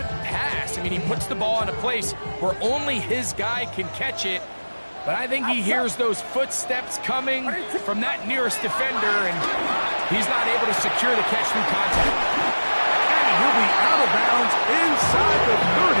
pass. I mean, he puts the ball in a place where only his guy can catch it. But I think he hears those footsteps coming from that nearest defender, and he's not able to secure the catch through contact. And he'll be out of bounds inside the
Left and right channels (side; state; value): both; inverted; correlation -1.00